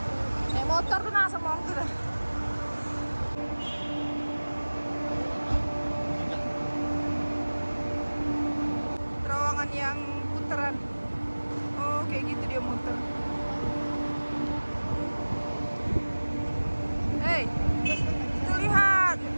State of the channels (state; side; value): inverted; both; correlation -1.00